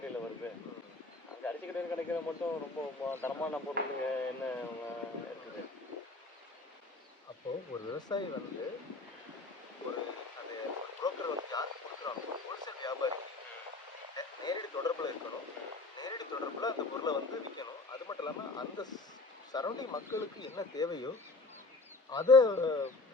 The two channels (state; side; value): quieter; right; 3.4 dB